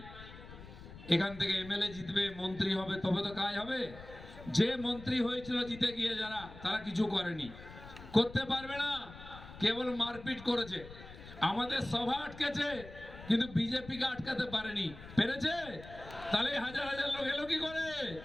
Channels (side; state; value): left; noise; rumble, 16 dB below the sound